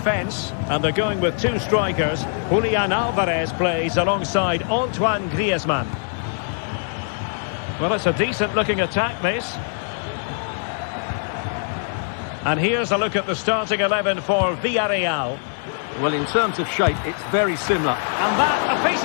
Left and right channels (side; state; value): right; silent; digital silence